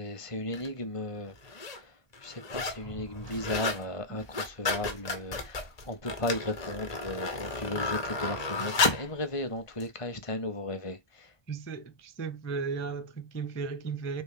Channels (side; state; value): right; late; 1.2 ms